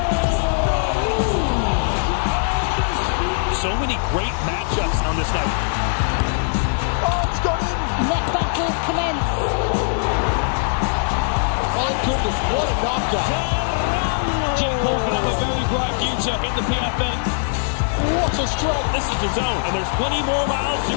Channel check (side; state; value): right; silent; digital silence